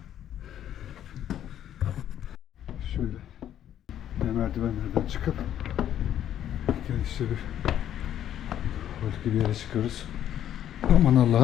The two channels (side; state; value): right; quieter; 10.8 dB